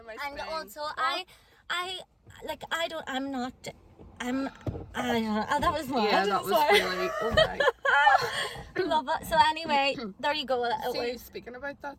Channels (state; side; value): identical; both; correlation 1.00